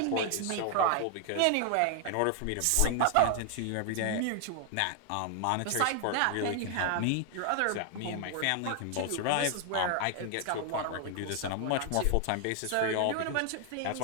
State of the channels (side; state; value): both; different; correlation 0.00